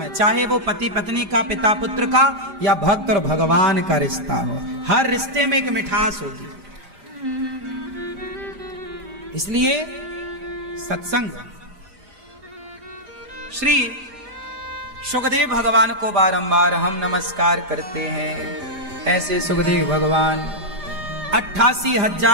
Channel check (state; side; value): late; left; 5.0 ms